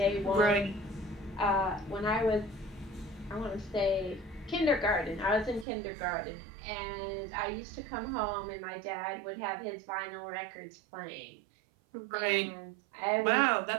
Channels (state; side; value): drops out; left; at 5.7 s